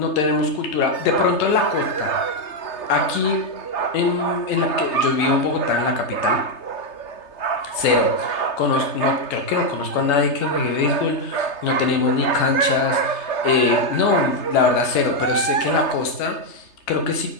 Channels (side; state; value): right; late; 3.3 ms